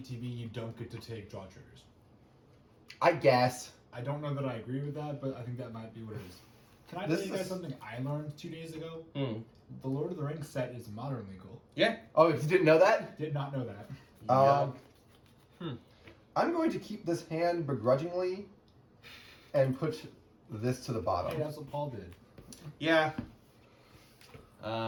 you don't get to take draw triggers. I guess. I don't know that I agree with that, but I think that might be what it is. Can I This tell you guys is- something I learned 2 days ago? Hmm. The Lord of the Rings set is modern legal. Yeah. Oh, if you didn't know that? Did not know that. I'm going to keep this hand begrudgingly and put this to the Hey, bottom. that's what Paul did. Yeah.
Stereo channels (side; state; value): both; identical; correlation 1.00